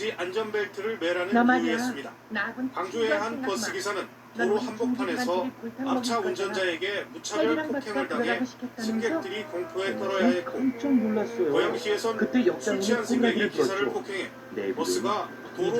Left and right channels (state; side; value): identical; both; correlation 1.00